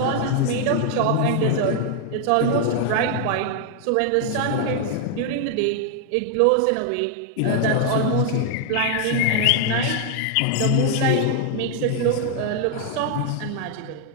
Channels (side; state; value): both; different; correlation 0.00